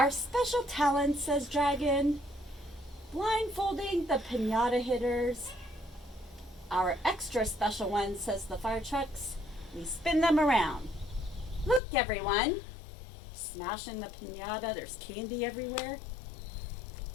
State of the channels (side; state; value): right; drops out; at 11.8 s